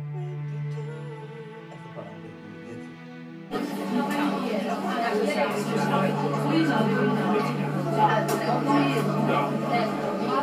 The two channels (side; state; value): both; identical; correlation 1.00